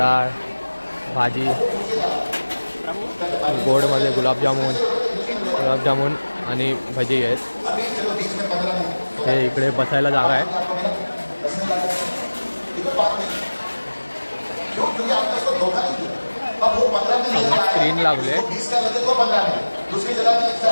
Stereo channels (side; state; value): both; inverted; correlation -1.00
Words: भाजी, गोडमध्ये गुलाबजामुन आणि भजी आहेत. हे इकडे बसायला जागा आहे. स्क्रीन लागले.